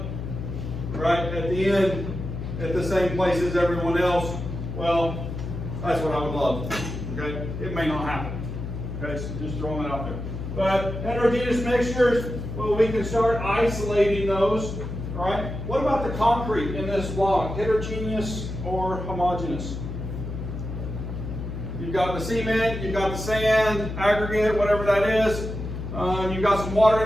right at the end at the same place as everyone else, well, that's what I would love. Okay? It may not happen. Okay? So just throwing it out there. But heterogeneous mixtures, well, we can start isolating those. All right? What about the concrete in this block? Heterogeneous or homogeneous? You've got the cement, you've got the sand, aggregate, whatever that is. You've got some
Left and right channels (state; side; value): noise; left; hum, 6 dB below the sound